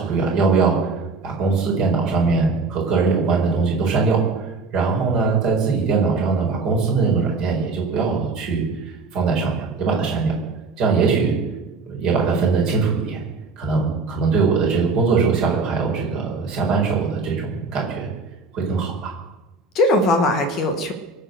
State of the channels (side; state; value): left; quieter; 3.8 dB